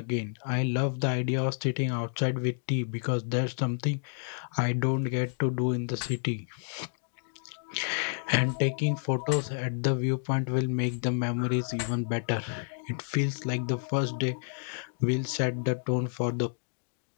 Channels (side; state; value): right; silent; digital silence